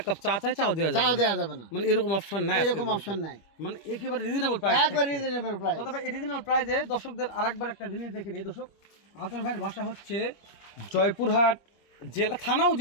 কাপ চা চাই, চাও দেওয়া চাও যাবে, দেওয়া যাবে না, মানে এরকম অপশন নাই, এরকম অপশন নাই, মানে একেবারে রিজনেবল প্রাইস, একবার রিজনেবল প্রাইস। তবে এই রিজনেবল প্রাইসে দর্শকদের আরেকবার একটা জিনিস দেখে নিই। দর্শক আতর ভাইয়ের বাসা হচ্ছে জয়পুরহাট জেলা, থানাও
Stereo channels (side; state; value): right; late; 25 ms